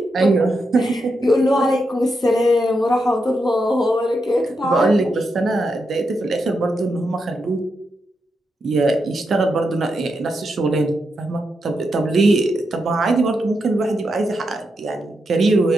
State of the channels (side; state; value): both; normal; correlation 0.85